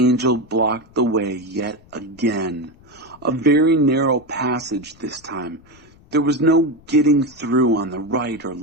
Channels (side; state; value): left; noise; rumble, 27 dB below the sound